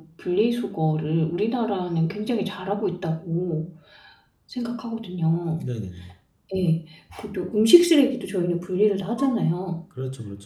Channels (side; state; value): both; identical; correlation 1.00